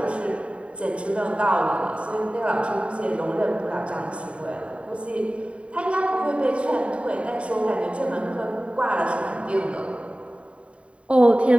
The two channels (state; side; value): late; left; 0.062 ms